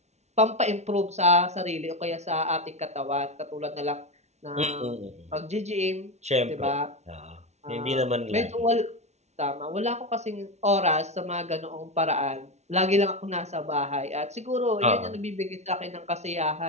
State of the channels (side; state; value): left; late; 0.32 ms